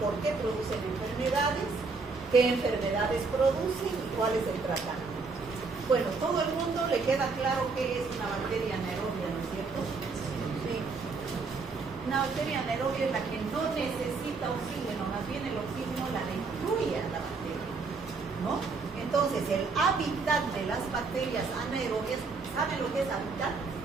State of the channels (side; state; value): left; quieter; 4.4 dB